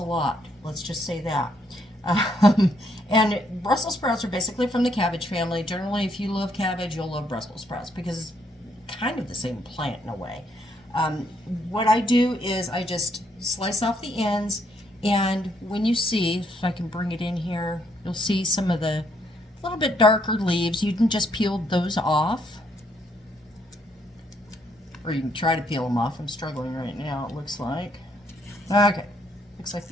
lot. Let's just say that. And Brussels sprouts are basically from the cabbage family. Generally, if you love cabbage, you'll love Brussels sprouts because it's kind of the same plant in a way. What I do is I just slice off the ends, and when you see, if I can bring it in here, you'll see some of the little bit darker leaves. You can just peel those off, or you can try to peel them off. I'm struggling right now, it looks like. Okay, looks like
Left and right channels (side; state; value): both; normal; correlation 0.72